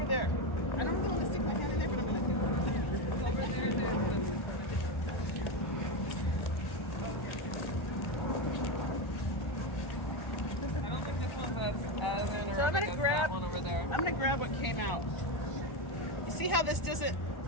there. I don't really want to stick my hand in there, but I'm going to do it. Go over there and do it. I don't think this one's as anaerobic So I'm gonna as grab- that one over there. I'm gonna grab what came out. You see how this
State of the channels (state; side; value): late; right; 1.4 ms